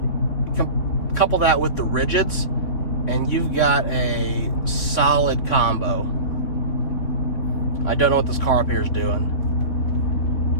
Couple that with the rigids, and you've got a solid combo. I don't know what this car up here is doing.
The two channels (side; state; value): right; late; 3.6 ms